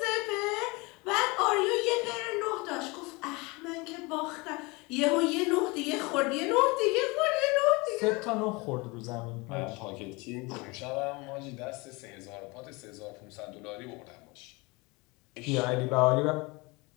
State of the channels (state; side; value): quieter; right; 26.0 dB